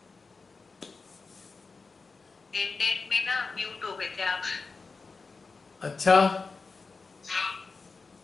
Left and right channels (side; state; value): right; quieter; 4.3 dB